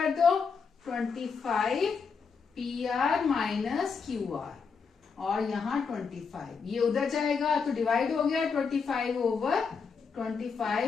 दो, 25 P R minus Q R और यहाँ 25, ये उधर जाएगा तो डिवाइड हो गया, 25 over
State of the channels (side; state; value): right; quieter; 5.5 dB